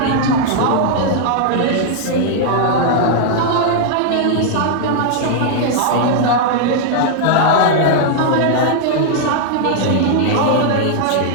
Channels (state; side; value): different; both; correlation -0.01